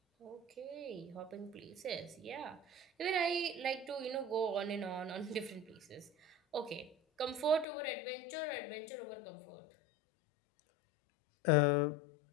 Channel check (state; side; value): drops out; right; at 7.7 s